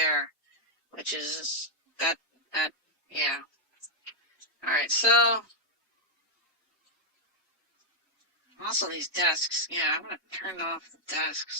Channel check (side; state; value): both; normal; correlation -0.03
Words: which is yeah. Alright, so also these desks. Yeah, I'm gonna turn off the